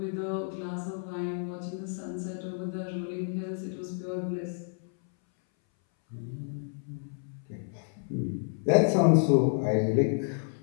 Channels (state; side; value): silent; right; 58 dB below the other